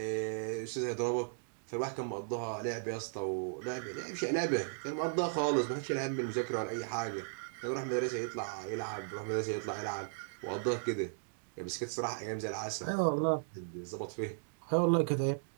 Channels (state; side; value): silent; left; digital silence